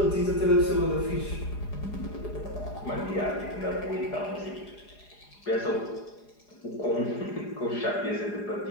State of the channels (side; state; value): right; late; 4.9 ms